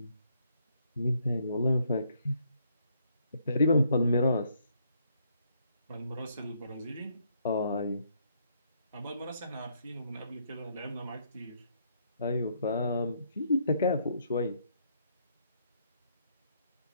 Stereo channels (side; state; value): both; inverted; correlation -0.71